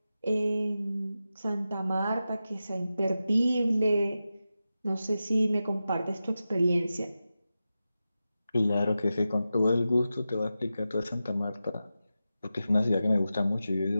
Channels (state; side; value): inverted; both; correlation -0.92